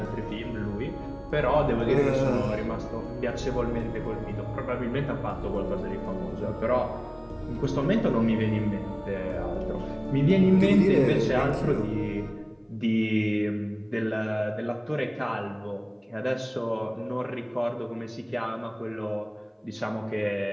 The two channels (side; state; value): both; identical; correlation 1.00